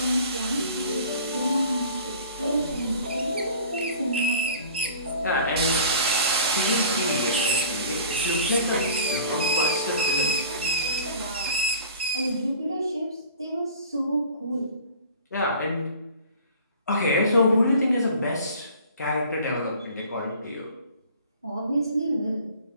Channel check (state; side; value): inverted; both; correlation -0.45